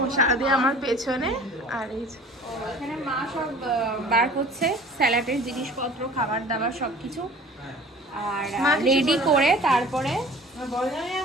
সারাদিন আমার পেছনে। আর এই এখানে মা সব বার করছে, স্যালাডের জিনিসপত্র, খাবার দাবার সবকিছু, আর রেডি করে তারপরে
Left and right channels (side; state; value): both; normal; correlation 0.46